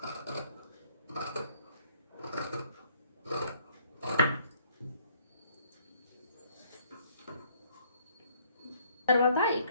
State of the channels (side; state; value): both; inverted; correlation -0.63